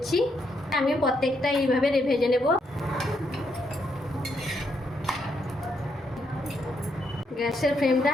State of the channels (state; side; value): normal; both; correlation 0.77